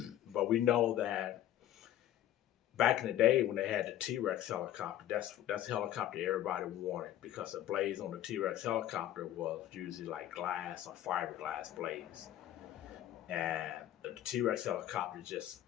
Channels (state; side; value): quieter; right; 12.5 dB